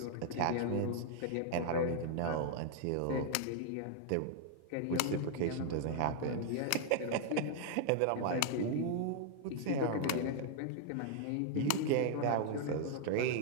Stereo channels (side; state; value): both; different; correlation 0.00